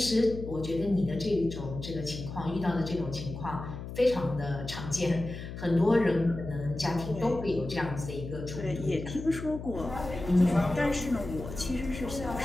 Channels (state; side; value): noise; left; hum, 9 dB below the sound